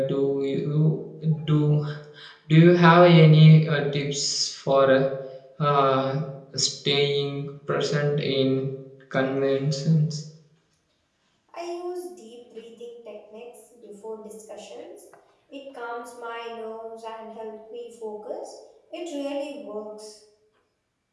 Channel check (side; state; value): both; identical; correlation 1.00